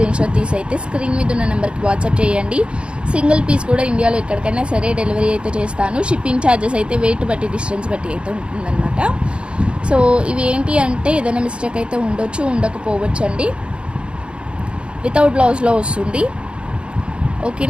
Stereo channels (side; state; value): left; late; 0.056 ms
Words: షాట్ తీసి అయితే స్క్రీన్ మీద ఉన్న నెంబర్కి వాట్సాప్ చేయండి. సింగిల్ పీస్ కూడా ఇండియాలో ఎక్కడికైనా సరే డెలివరీ అయితే చేస్తాను. షిప్పింగ్ ఛార్జెస్ అయితే వెయిట్ బట్టి డిస్టెన్స్ బట్టి అయితే ఉంటుందన్నమాట. సో ఇవి ఏంటి అంటే ఏదైనా మిస్టేక్ అయితే ఉండొచ్చు, ఉండకపోవచ్చు అండి. వితౌట్ బ్లౌజ్లో వస్తుంది.